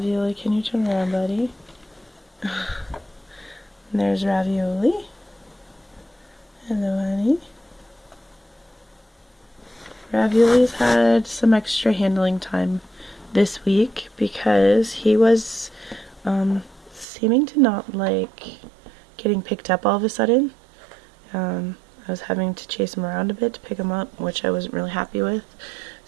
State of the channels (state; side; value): drops out; left; at 17.1 s